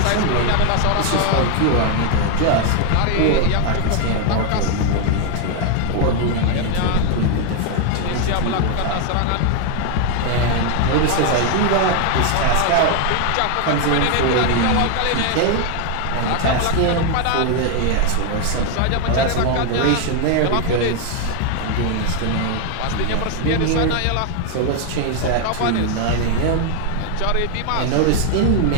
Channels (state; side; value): different; both; correlation 0.00